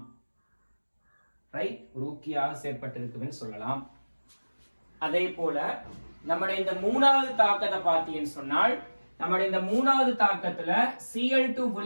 ரைட்? ஒரு ஊக்கியாக செயற்பட்டிருக்குதுன்னு சொல்லலாம். அதே போல நம்முடைய இந்த மூணாவது தாக்கத்தை பார்த்தீங்கன்னு சொன்னால், நம்முடைய இந்த மூணாவது தாக்கத்துல Cl2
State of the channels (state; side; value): inverted; both; correlation -1.00